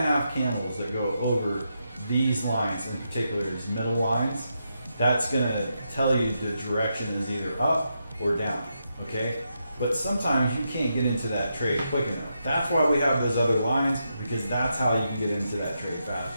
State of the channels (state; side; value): inverted; both; correlation -0.84